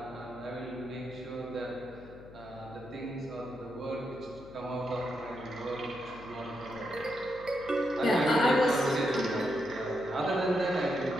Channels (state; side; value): noise; left; hum, 18 dB below the sound